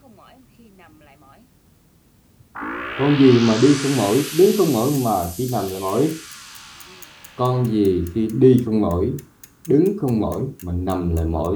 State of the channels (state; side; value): identical; both; correlation 1.00